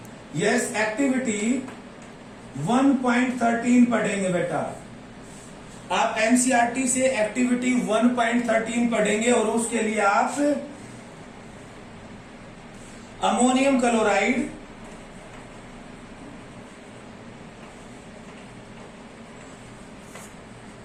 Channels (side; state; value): both; identical; correlation 1.00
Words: यस एक्टिविटी 1.13 पढ़ेंगे बेटा। आप एनसीईआरटी से एक्टिविटी 1.13 पढ़ेंगे और उसके लिए आप अमोनियम क्लोराइड